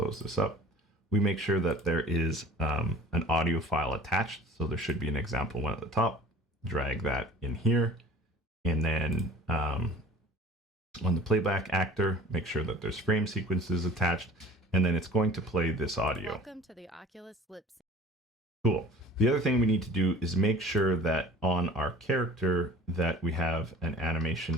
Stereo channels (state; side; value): normal; both; correlation 0.45